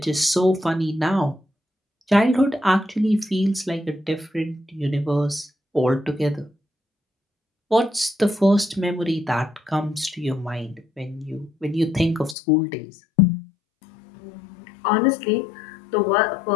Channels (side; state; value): right; drops out; at 12.4 s